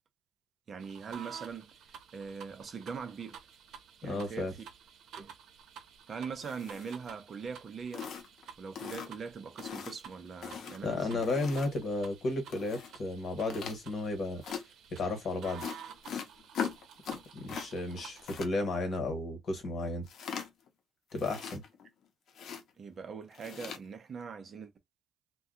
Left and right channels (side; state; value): both; normal; correlation 0.70